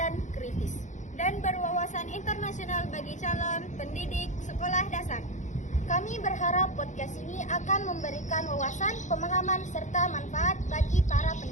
kritis, dan berwawasan internasional bagi calon pendidik sekolah dasar. Kami berharap podcast ini akan memberikan wawasan, pemahaman, serta manfaat bagi para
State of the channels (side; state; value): right; late; 0.35 ms